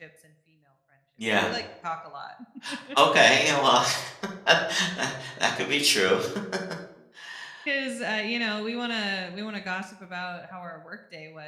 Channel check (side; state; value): both; identical; correlation 1.00